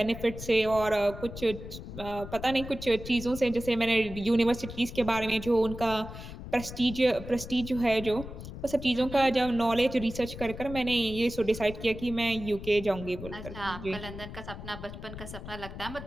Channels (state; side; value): noise; left; rumble, 11 dB below the sound